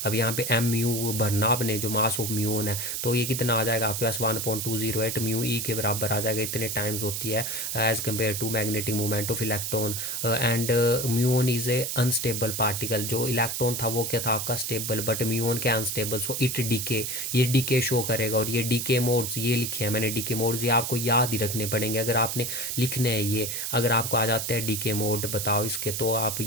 अब यहाँ पे m म्यू भरना आपने, जो मास ऑफ म्यून है, तो ये कितना आ जाएगा आपके पास, 1.208 म्यू ई के बराबर आ जाएगा, इतने टाइम्स होती है as compare to magnetic movement of electron. And muon is a unstable particle, जो इलेक्ट्रॉन था वो क्या था आपका स्टेबल, बट म्यून क्या अनस्टेबल, सो इट डीके, ये डीके शो करेगा। और ये डीके मोड्स ये लिखे हैं मैंने, डीके मोड्स ये आपको याद ही रखने पड़ेंगे अगर आपने लिखने हैं ये, अगर आपको आ जाते हैं डीके मोड बताओ इसके, तो आप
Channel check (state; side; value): noise; right; hiss, 3 dB below the sound